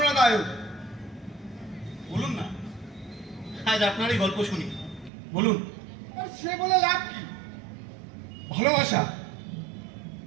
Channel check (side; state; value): left; drops out; at 5.1 s